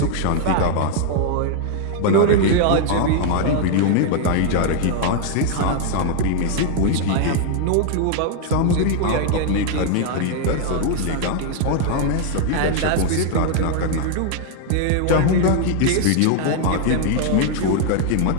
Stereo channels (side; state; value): both; different; correlation 0.00